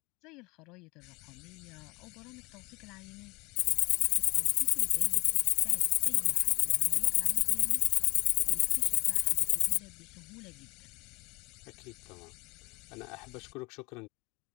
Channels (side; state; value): right; quieter; 27.3 dB